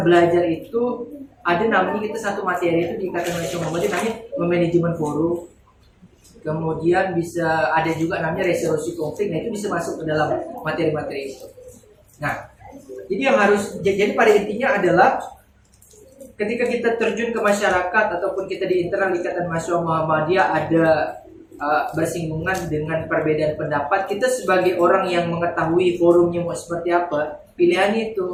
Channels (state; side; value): identical; both; correlation 1.00